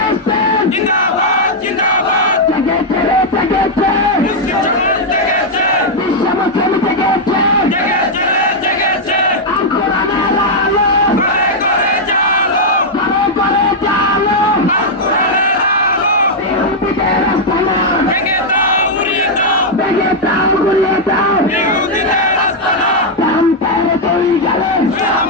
জিন্দাবাদ জিন্দাবাদ জেগেছে রে জেগেছে মুসলিম সমাজ জেগেছে বিশ্ব মুসলিম জেগেছে জেগেছে রে জেগেছে আল কোরআনের আলো ঘরে ঘরে জালো ঘরে ঘরে জালো আল কোরআনের আলো ইহুদিদের আস্তানা ভেঙে দাও উড়িয়ে দাও ভেঙে দাও গুলিয়ে দাও ইহুদিদের আস্তানা রামপের দুই গেলে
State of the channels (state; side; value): normal; both; correlation -0.03